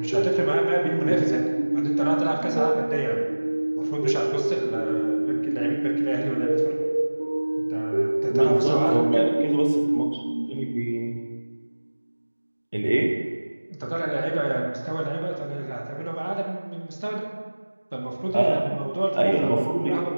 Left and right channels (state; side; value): inverted; both; correlation -1.00